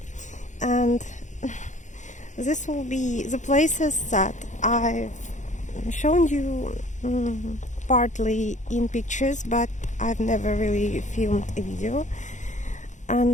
and this will be the places that I've shown you partly in pictures, but I've never really filmed a video.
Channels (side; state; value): right; late; 0.35 ms